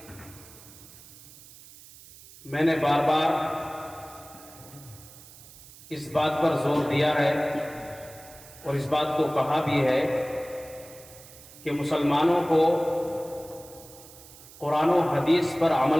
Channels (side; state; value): right; noise; hiss, 20 dB below the sound